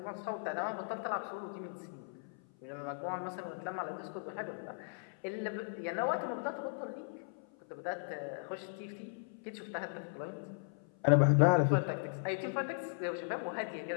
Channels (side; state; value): right; silent; 53 dB below the other